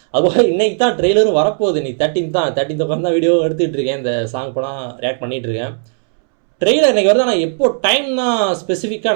அதுபோல் இன்றைக்கி தான் ட்ரெய்லரும் வரப்போகுது. இன்றைக்கி 13th உட்காந்து தான் வீடியோ எடுத்துகிட்டு இருக்கேன். இந்த சாங் இப்போ தான் ரியாக்ட் பண்ணிகிட்ருக்கேன். ட்ரெய்லர் இன்றைக்கி வருது. ஆனால் எப்போ டைம்னா ஸ்பெசிஃபிக்காக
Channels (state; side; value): silent; left; 69 dB below the other